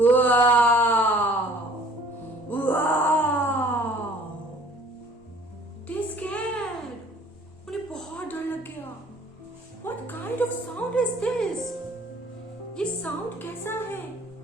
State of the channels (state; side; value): normal; both; correlation 0.53